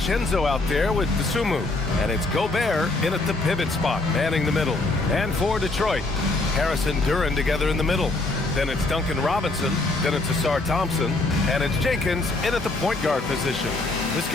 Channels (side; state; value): right; quieter; 3.1 dB